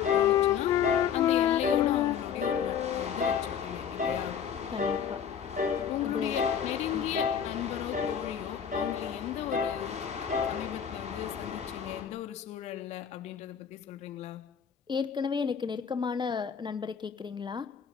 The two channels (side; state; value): right; quieter; 8.0 dB